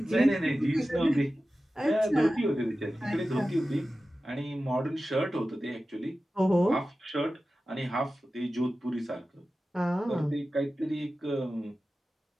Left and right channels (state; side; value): normal; both; correlation 0.94